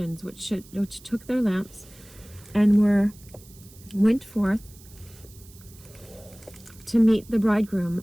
which took their lamps and went forth to meet the bridegroom,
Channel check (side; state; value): right; noise; hiss, 23 dB below the sound